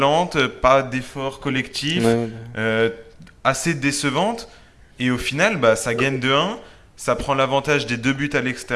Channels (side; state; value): both; identical; correlation 1.00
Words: pas d'effort Ouais, collectif, ouais. euh, assez décevante. Et au final, bah, ça gagne 2-1, ça prend l'avantage des deux buts à